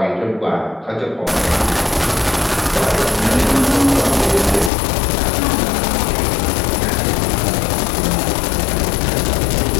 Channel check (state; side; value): drops out; right; at 4.7 s